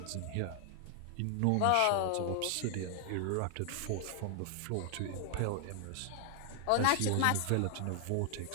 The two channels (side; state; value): both; different; correlation 0.00